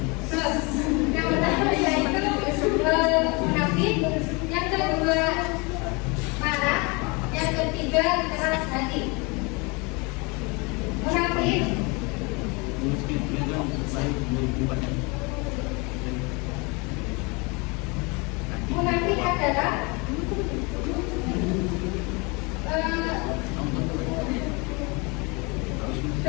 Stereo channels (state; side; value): quieter; right; 28.9 dB